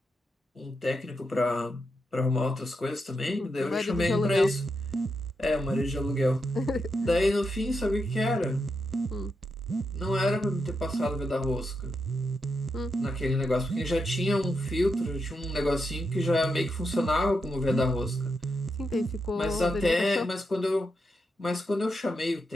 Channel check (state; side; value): normal; both; correlation 0.84